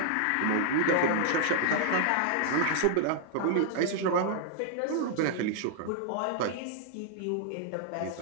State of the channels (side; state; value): both; different; correlation -0.01